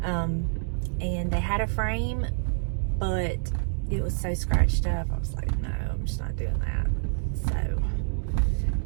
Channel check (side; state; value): left; silent; digital silence